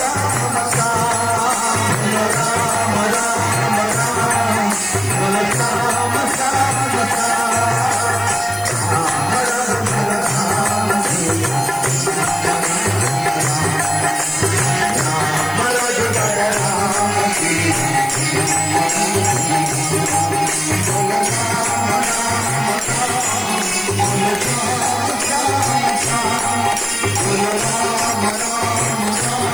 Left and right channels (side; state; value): left; noise; hiss, 16 dB below the sound